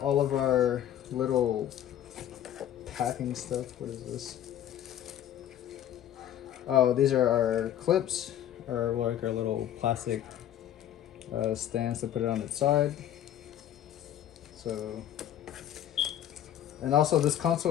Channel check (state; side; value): quieter; right; 11.1 dB